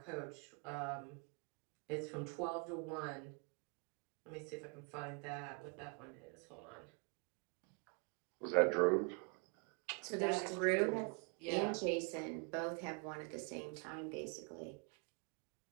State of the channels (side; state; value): left; quieter; 35.6 dB